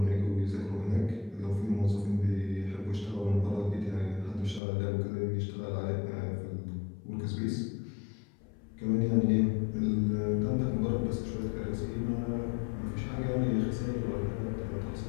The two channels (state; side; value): drops out; right; at 4.6 s